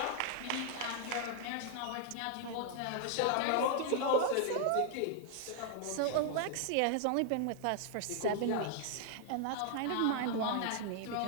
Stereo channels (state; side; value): different; both; correlation 0.00